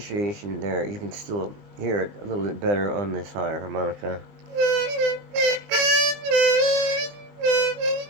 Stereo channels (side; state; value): left; late; 20 ms